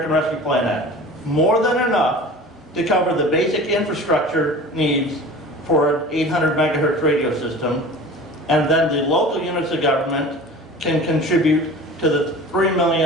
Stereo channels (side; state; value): both; normal; correlation 0.39